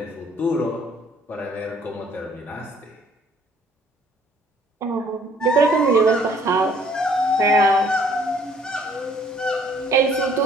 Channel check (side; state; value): both; normal; correlation 0.60